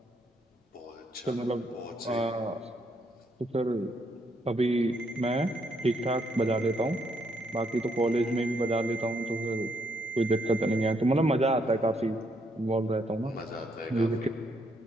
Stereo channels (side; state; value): both; normal; correlation 0.74